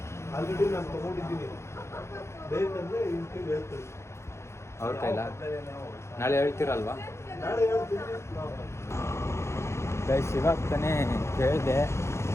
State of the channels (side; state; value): right; late; 0.13 ms